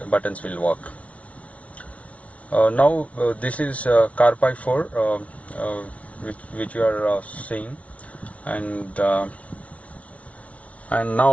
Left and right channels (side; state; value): right; late; 0.065 ms